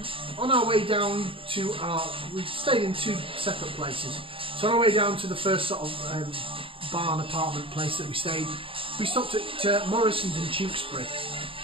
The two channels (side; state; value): left; late; 0.26 ms